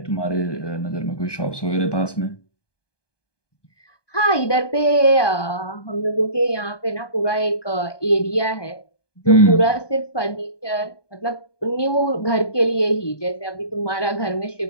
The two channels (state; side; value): late; right; 1.2 ms